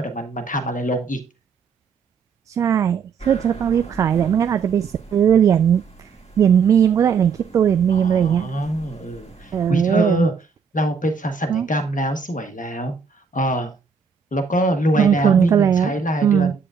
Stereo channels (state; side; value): quieter; left; 5.8 dB